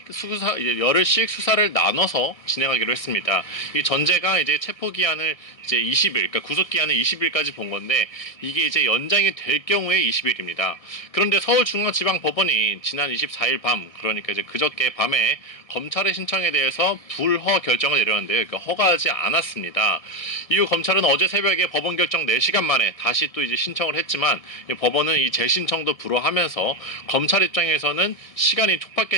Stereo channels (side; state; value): right; late; 1.6 ms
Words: 수사를 나눠서 진행하기로 했습니다. 이 전제가 이제 체포 기한을 이제 20일, 그러니까 구속 기한을 20일까지 본 건데 이게 이제 연장이 될 경우에 20일입니다. 그런데 서울중앙지방법원이 지난 24일 밤, 그러니까 이제 그저께 밤에 검찰의 신청에 대해서 불허 결정을 내렸는데요. 그러니까 허가하지 않았습니다. 이후 검찰은 어제 새벽에 법원 결정 4시간 만에 다시 또 이제 신청을 했지만 법원은 이 재신청도 불허하면서 검찰 입장에서는 시간이